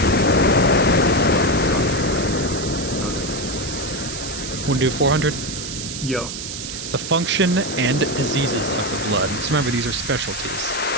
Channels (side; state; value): right; noise; hiss, 7 dB below the sound